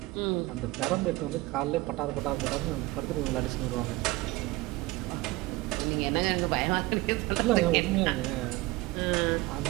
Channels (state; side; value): quieter; left; 20.3 dB